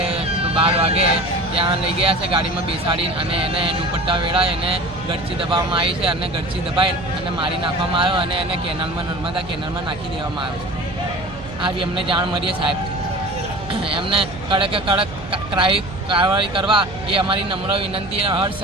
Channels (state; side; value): noise; right; hum, 15 dB below the sound